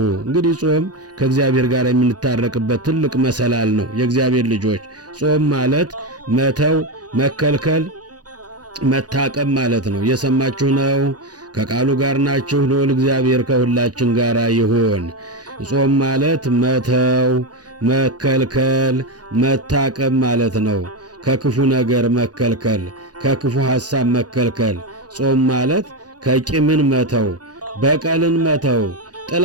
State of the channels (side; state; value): left; late; 0.68 ms